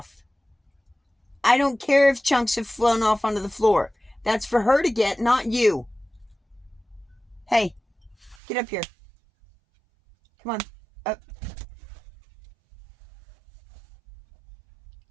I don't care if chunks have flown off onto the floor. That's for her to get, not you. Hey, get up here. Come on, up.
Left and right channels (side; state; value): left; drops out; at 8.3 s